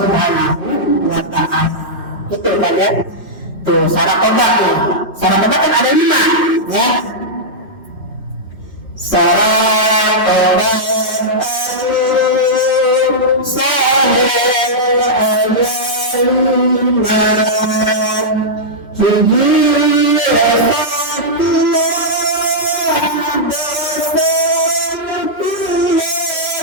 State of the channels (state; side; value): normal; both; correlation -0.09